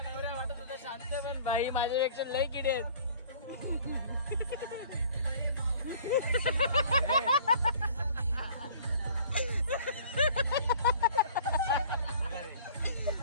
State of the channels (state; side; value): inverted; both; correlation -0.49